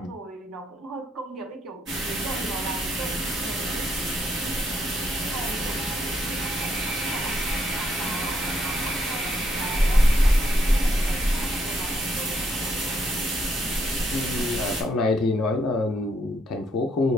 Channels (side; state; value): both; normal; correlation 0.74